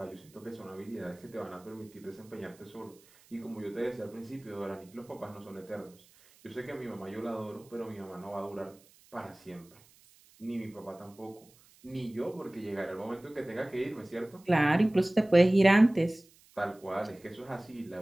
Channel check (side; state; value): right; noise; hiss, 27 dB below the sound